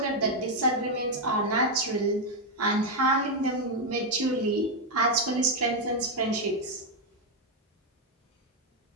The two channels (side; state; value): both; normal; correlation 0.02